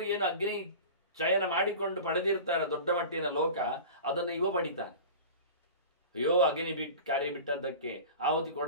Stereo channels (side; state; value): both; inverted; correlation -0.34